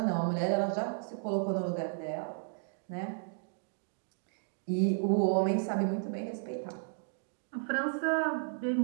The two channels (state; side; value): silent; left; digital silence